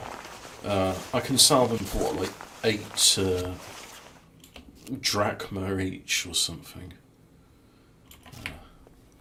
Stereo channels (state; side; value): identical; both; correlation 1.00